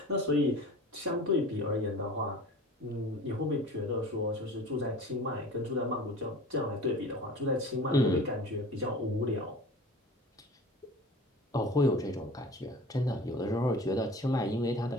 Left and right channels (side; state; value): both; normal; correlation 0.40